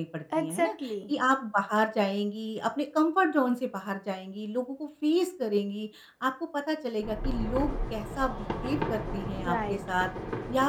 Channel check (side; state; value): both; identical; correlation 1.00